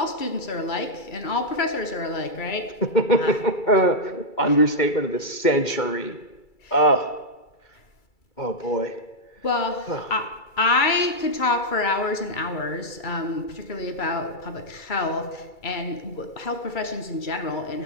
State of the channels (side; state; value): right; late; 2.3 ms